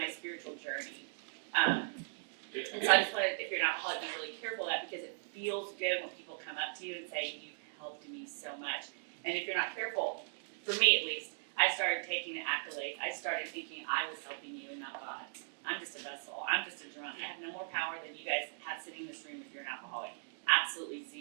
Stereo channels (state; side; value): silent; left; digital silence